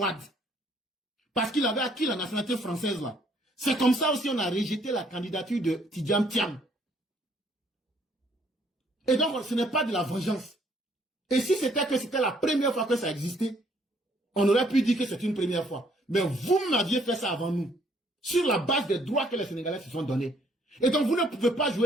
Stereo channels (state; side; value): normal; both; correlation 0.65